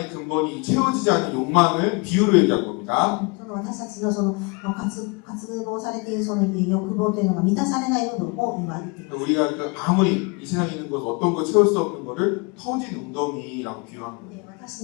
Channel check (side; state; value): right; quieter; 29.9 dB